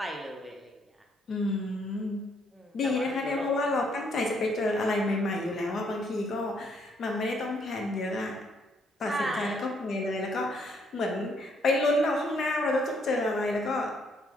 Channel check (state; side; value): normal; both; correlation 0.70